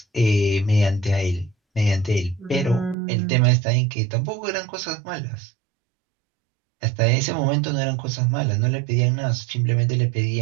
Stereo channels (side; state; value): left; drops out; at 3.0 s